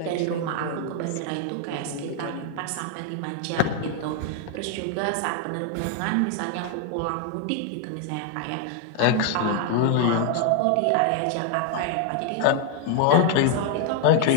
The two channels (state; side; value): different; both; correlation 0.00